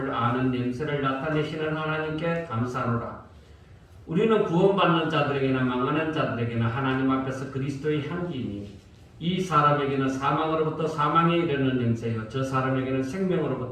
아는 냄새를 나타내시는 하나님께 감사하노라. 우리는 구원받는 자들에게나 망하는 자들에게나 하나님 앞에서 그리스도의 향기이니 이 사람에게는 사망으로부터 사망에 이르는 냄새요 저 사람에게는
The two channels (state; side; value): identical; both; correlation 1.00